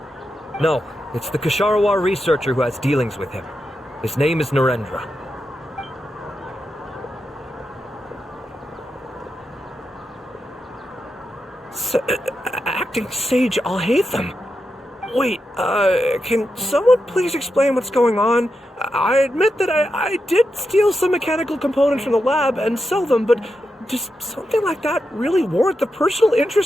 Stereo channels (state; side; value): normal; both; correlation 0.87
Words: No, it's the Ksharawar researcher who has dealings with him. His name is Narendra. Acting Sage Alhaitham? Wait, can someone please explain what's going on? I admit that I did steal some mechanical components from the lab and sell them, but does something like that really warrant the personal